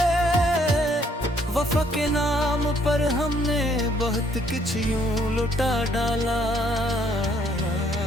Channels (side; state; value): both; normal; correlation 0.66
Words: वफा के नाम पर हमने बहुत कुछ यूं लुटा डाला,